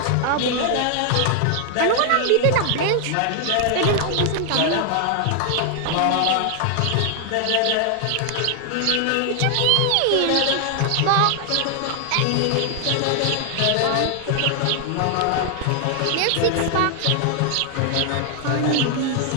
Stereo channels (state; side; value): different; both; correlation 0.00